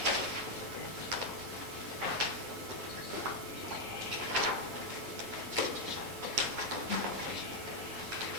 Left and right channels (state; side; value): normal; both; correlation 0.01